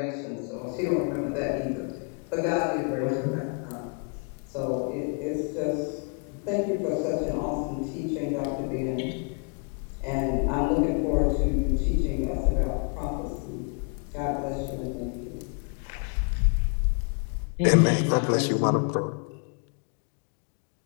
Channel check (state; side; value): quieter; right; 39.4 dB